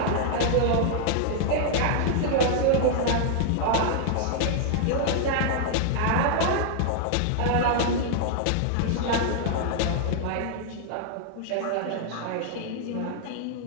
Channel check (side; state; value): both; different; correlation 0.00